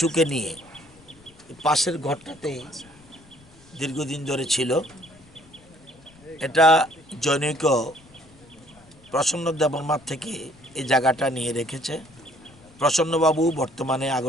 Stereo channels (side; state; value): left; noise; rumble, 26 dB below the sound